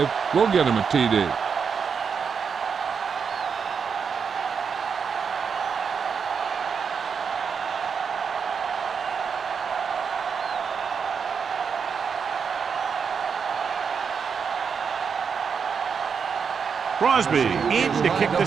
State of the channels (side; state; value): left; quieter; 6.3 dB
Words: will get them a TD. Crosby in to kick